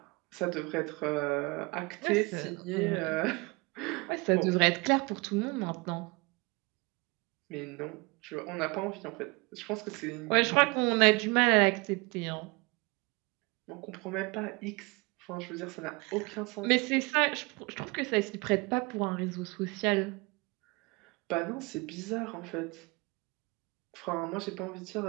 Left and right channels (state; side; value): quieter; left; 26.4 dB